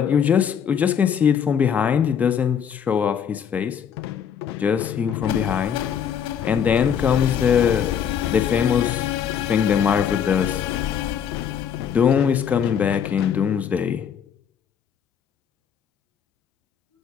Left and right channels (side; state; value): right; quieter; 8.0 dB